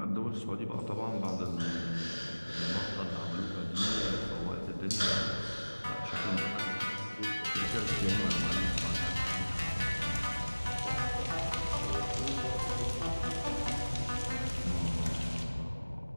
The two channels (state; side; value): inverted; both; correlation -1.00